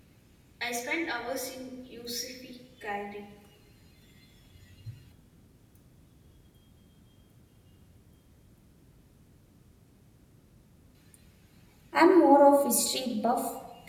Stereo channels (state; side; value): identical; both; correlation 1.00